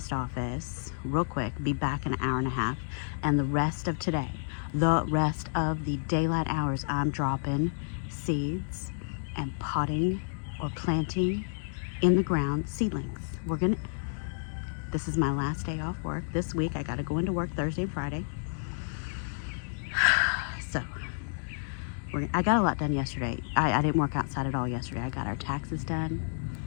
office real quick, be back in an hour and a half, and the rest of today, the rest of the daylight hours, I'm dropping seeds and potting or planting in the ground seedlings. This is my last day off work. This week I gotta go into work Thursday and Friday. So I got a lot done yesterday. I didn't work outside at all yesterday. I got our taxes done.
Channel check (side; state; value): right; silent; digital silence